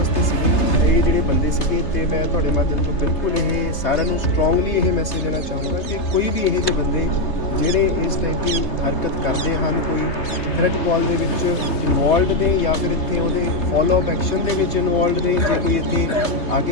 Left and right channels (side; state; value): right; late; 3.3 ms